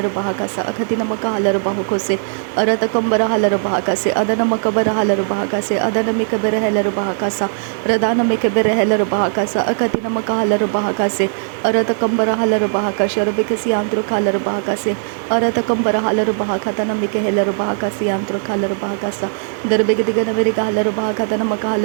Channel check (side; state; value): left; silent; digital silence